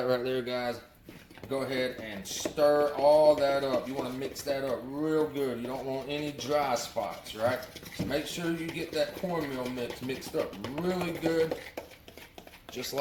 right there, guys. Go ahead and stir all that up. You want to mix that up real good. You don't want any dry spots, right? So make sure you get that cornmeal mix mixed up really good, just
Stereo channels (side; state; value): both; identical; correlation 1.00